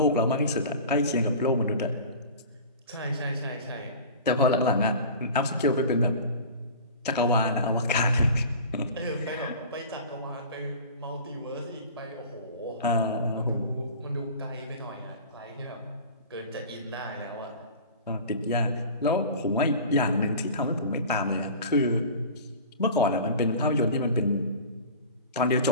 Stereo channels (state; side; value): inverted; both; correlation -0.38